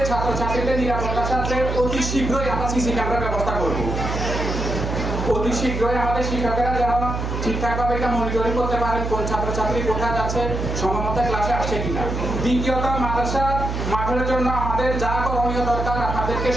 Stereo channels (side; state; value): right; noise; hum, 3 dB below the sound